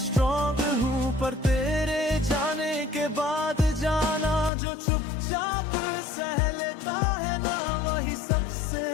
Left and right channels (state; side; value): drops out; right; at 4.5 s